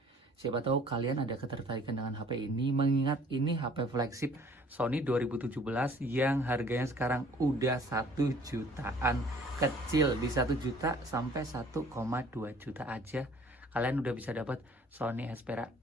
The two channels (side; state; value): both; normal; correlation 0.54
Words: Siapa tahu kalian ada ketertarikan dengan HP ini, mengingat ini HP flagship Sony 2017 yang harganya sekarang udah 1 jutaan kecil. Di 1 juta sampai 1,2 juta aja kalian udah bisa dapat Sony Xperia